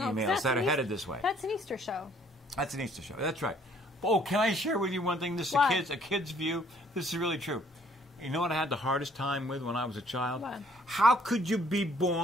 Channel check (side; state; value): both; normal; correlation 0.62